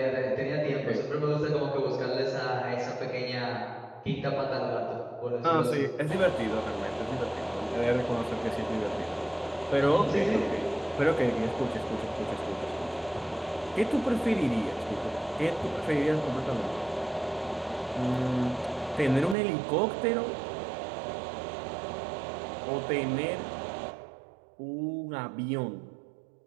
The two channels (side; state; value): left; drops out; at 19.4 s